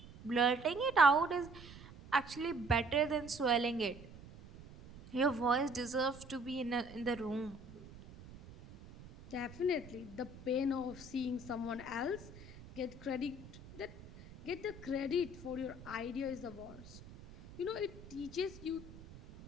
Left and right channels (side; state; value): right; noise; rumble, 17 dB below the sound